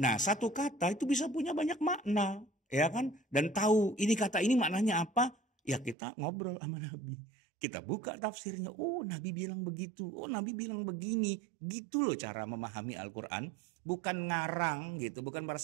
Nah, satu kata itu bisa punya banyak makna, ya kan? Dan tahu ini kata ini maknanya apa? Ya kita ngobrol sama Nabi. Kita buka tafsirnya, oh Nabi bilang begitu, oh Nabi bilang begini. Gitu loh cara memahami Al-Quran. Bukan ngarang gitu, bukan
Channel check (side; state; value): left; drops out; at 6.0 s